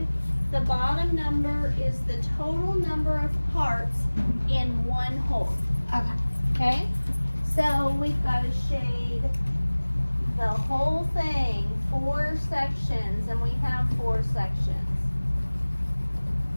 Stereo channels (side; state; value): both; inverted; correlation -1.00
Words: The bottom number is the total number of parts in one hole. Okay. Okay? So we've gotta shade the whole thing, 4 sections, and we have 4 sections.